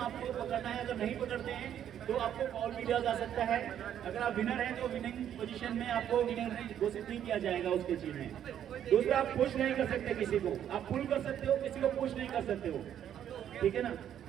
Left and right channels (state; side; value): quieter; left; 10.0 dB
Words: आपको पकड़ना है, अगर नहीं पकड़ते हैं तो आपको फॉल भी दिया जा सकता है। अगर आप विनर हैं तो विनिंग पोजीशन में आपको विनर घोषित नहीं किया जाएगा उस चीज में। दूसरा, आप पुश नहीं कर सकते किसी को, आप पुल कर सकते हो, किसी को पुश नहीं कर सकते हो, ठीक है ना।